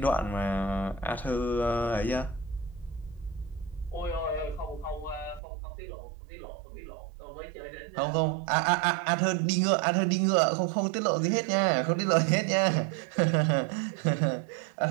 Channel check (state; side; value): drops out; left; at 5.4 s